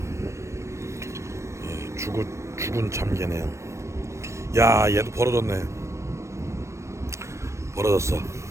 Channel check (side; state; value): left; late; 0.14 ms